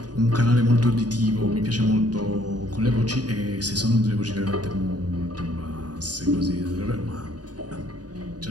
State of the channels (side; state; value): left; late; 0.69 ms